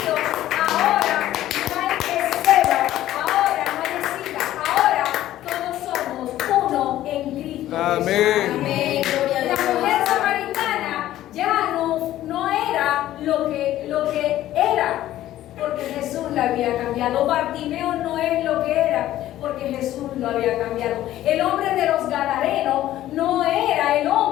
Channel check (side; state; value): right; quieter; 13.7 dB